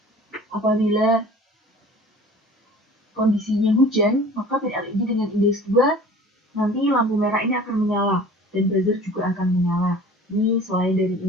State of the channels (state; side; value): normal; both; correlation 0.44